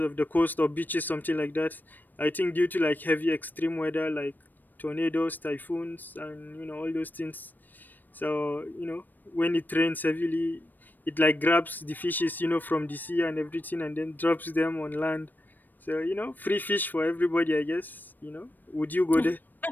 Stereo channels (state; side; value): late; right; 0.089 ms